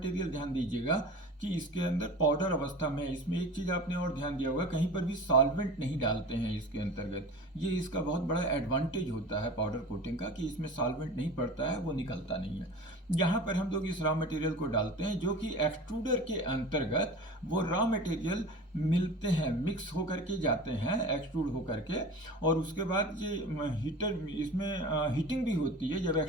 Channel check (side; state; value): both; normal; correlation 0.36